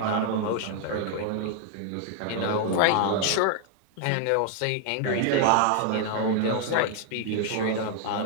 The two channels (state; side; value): different; both; correlation 0.00